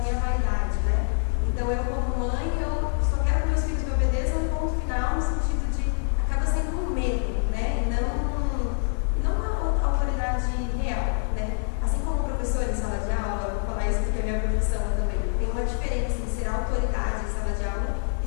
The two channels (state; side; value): silent; right; digital silence